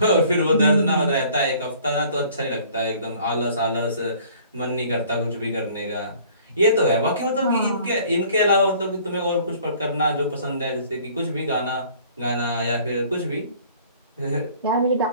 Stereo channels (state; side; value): inverted; both; correlation -0.54